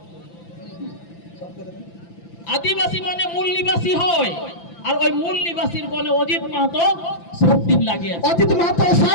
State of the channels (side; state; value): right; late; 5.9 ms